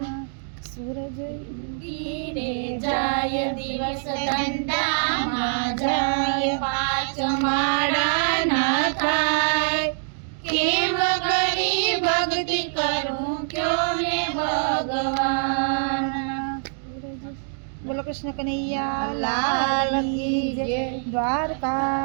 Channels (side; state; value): left; silent; digital silence